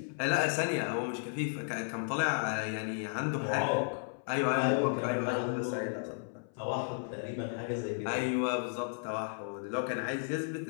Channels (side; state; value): right; silent; 55 dB below the other